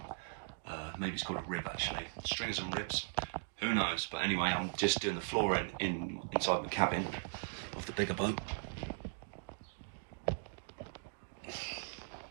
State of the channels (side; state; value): left; silent; digital silence